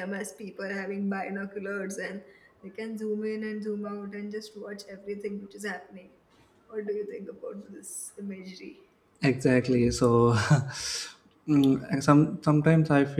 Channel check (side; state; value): both; identical; correlation 1.00